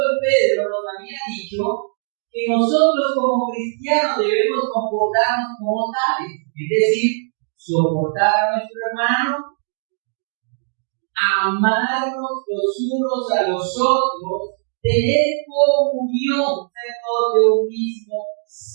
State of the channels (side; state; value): left; silent; digital silence